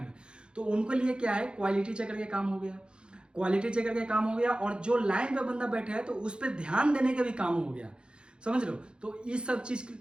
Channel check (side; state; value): left; late; 0.053 ms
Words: तो उनके लिए क्या है, क्वालिटी चेकर के काम हो गया, क्वालिटी चेकर के काम हो गया। और जो लाइन पे बंदा बैठे है तो उस पर ध्यान देने का भी काम हो गया, समझ लो। तो इस सब चीज के